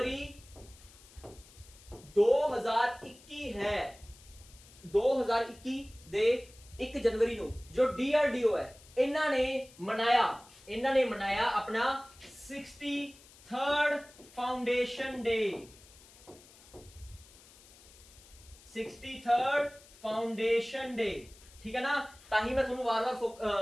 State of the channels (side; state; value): left; noise; hiss, 23 dB below the sound